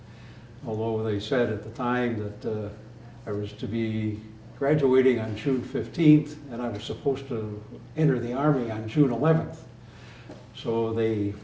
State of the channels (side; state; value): both; identical; correlation 1.00